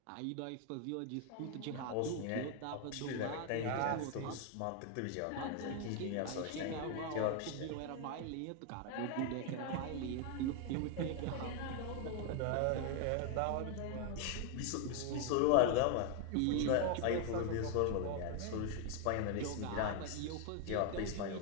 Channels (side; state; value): both; different; correlation 0.00